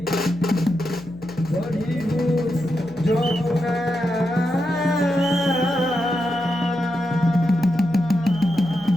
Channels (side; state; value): left; noise; hum, 20 dB below the sound